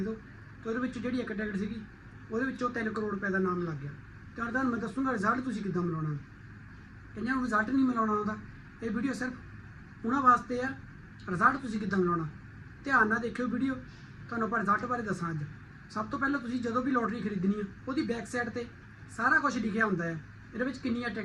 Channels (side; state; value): both; identical; correlation 1.00